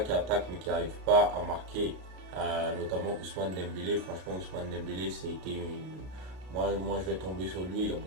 mais qui n'arrive pas à marquer. Notamment Ousmane Dembélé. Franchement Ousmane Dembélé, moi je vais tomber sur lui. Il y a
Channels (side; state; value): left; late; 33 ms